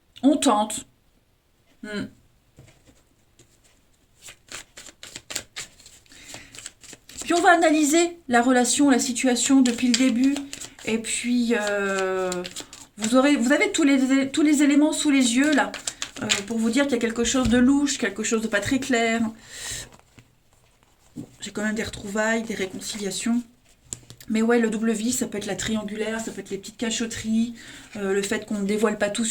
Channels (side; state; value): both; identical; correlation 1.00